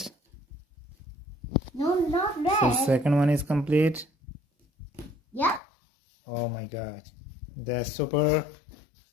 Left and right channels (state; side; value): drops out; right; at 5.6 s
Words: No, not So red. second one is complete. Yep. Oh my god. That's super.